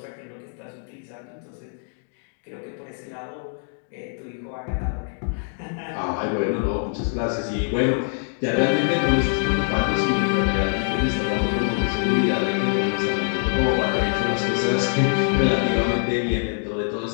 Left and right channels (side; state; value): right; silent; 63 dB below the other